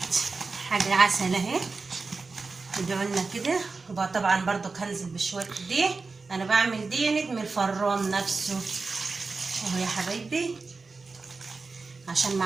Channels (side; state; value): left; quieter; 4.1 dB